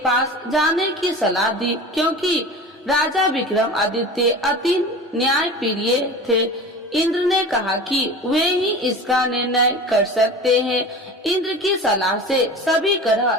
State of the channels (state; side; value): normal; both; correlation 0.35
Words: जाने की सलाह दी, क्योंकि राजा विक्रमादित्य अति न्यायप्रिय थे। इंद्र ने कहा कि वे ही इसका निर्णय कर सकते हैं। इंद्र की सलाह से सभी